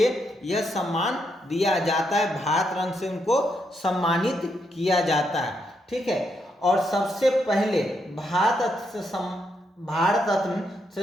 यह सम्मान दिया जाता है। भारत रत्न से उनको सम्मानित किया जाता है। ठीक है, और सबसे पहले भारत रत्न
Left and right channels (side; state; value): both; normal; correlation 0.79